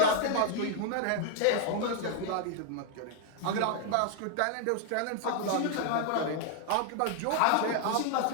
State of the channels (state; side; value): different; both; correlation 0.00